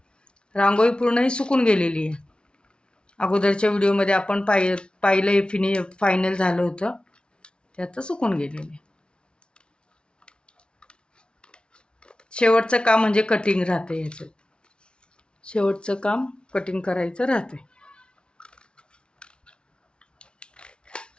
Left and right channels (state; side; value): late; right; 0.056 ms